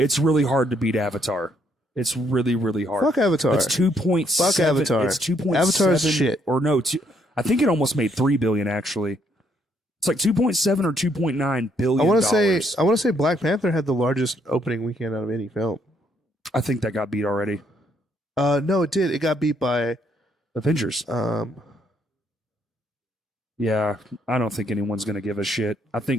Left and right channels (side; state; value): both; normal; correlation 0.71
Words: really hard to beat Avatar. It's really, really hard. Fuck Avatar. It's 2.7. Fuck Avatar. It's 2.7. Avatar's shit. Or no, I think it almost made $3 billion actually. It's like 2.7 or 2.9 billion. I want to say Black Panther had the largest opening weekend out of any film. I think that got beat already. No, it did. It got beat by Avengers. Yeah, I don't think anyone's gonna give a shit. I